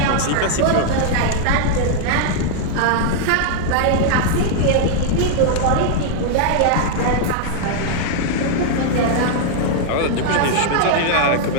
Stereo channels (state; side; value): different; both; correlation -0.01